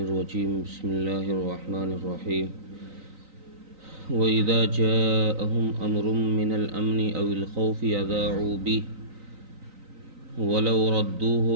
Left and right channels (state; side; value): late; left; 3.9 ms